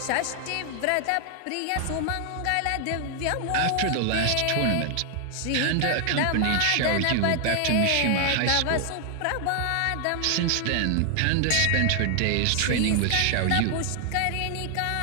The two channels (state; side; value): different; both; correlation 0.00